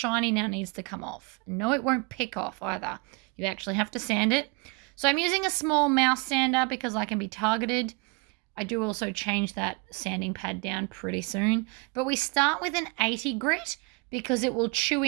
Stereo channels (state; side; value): quieter; left; 30.8 dB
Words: now needs to come off. No, it won't pick off either. You actually have to sand it. So I'm using a small mouse sander because I can be targeted. I do also change that sanding pad down pretty soon. But we start with an 80 grit because it will chew